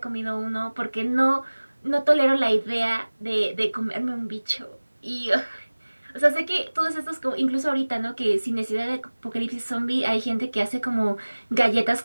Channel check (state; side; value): inverted; both; correlation -1.00